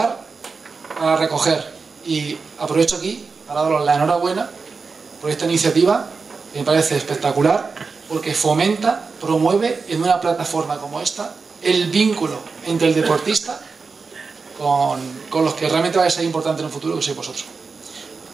para recoger, y aprovecho aquí para daros la enhorabuena por esta iniciativa, que me parece espectacular, porque fomenta, promueve en una plataforma como esta el vínculo entre el deportista con los que realmente va a ser importante en el futuro, que sois vosotros.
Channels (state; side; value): quieter; left; 4.7 dB